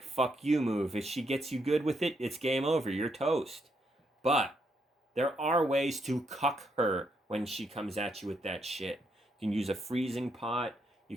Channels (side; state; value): both; normal; correlation 0.77